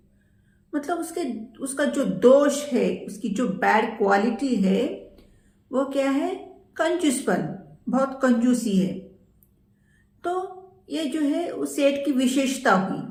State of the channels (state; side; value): identical; both; correlation 1.00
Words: मतलब उसका जो दोष है, उसकी जो बैड क्वालिटी है वो क्या है? कंजूसपन, बहुत कंजूसी है। तो ये जो है उस सेठ की विशेषता हुई।